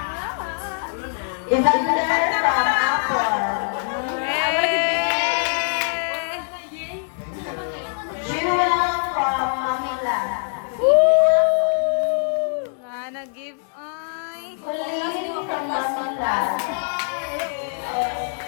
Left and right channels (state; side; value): silent; right; 63 dB below the other